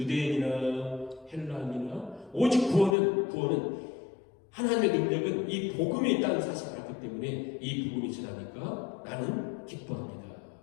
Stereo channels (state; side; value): drops out; right; at 3.0 s